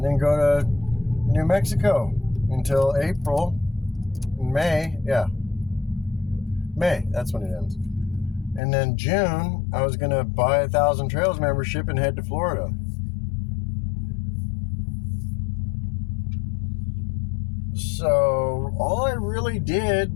then go to New Mexico until April. May, that's when it ends. And then June, I was going to buy a Thousand Trails membership and head to Florida. So all I really did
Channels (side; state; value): right; drops out; at 8.6 s